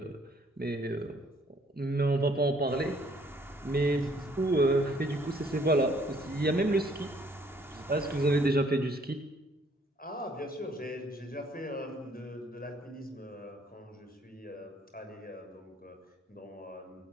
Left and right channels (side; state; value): both; normal; correlation 0.63